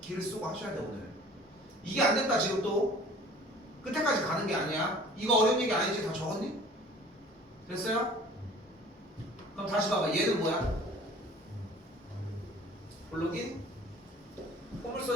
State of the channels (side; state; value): both; normal; correlation 0.48